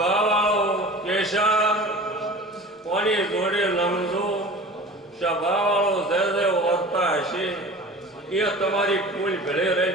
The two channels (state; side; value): normal; both; correlation 0.38